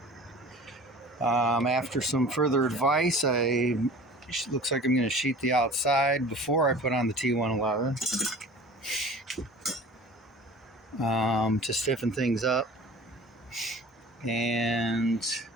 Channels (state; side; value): normal; both; correlation 0.42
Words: after some further advice, looks like I'm going to sheet the outside before I put on the T111 to stiffen things up. And